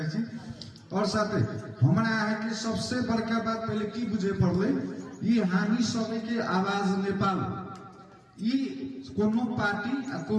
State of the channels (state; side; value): identical; both; correlation 1.00